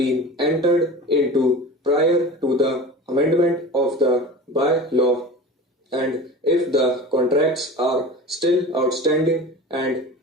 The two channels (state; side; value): normal; both; correlation 0.34